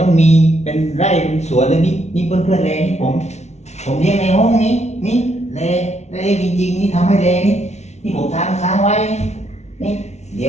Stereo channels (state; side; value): late; right; 0.32 ms